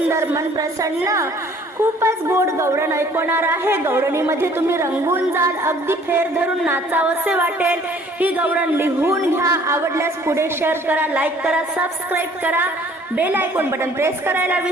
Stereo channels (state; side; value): normal; both; correlation 0.56